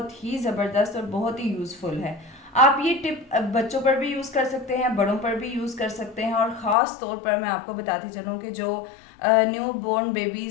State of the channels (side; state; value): right; drops out; at 6.8 s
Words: ही ज़बरदस्त और बहुत ही यूज़फुल है। आप ये टिप बच्चों पर भी यूज़ कर सकते हैं, बड़ों पर भी यूज़ कर सकते हैं और ख़ास तौर पर मैं आपको बताती चलूँ कि जो न्यू बोर्न